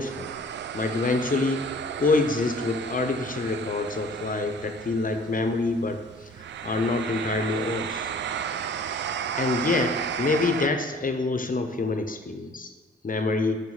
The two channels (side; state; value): both; normal; correlation 0.51